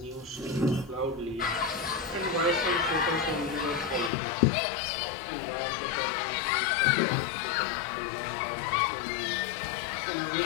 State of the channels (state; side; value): drops out; right; at 4.1 s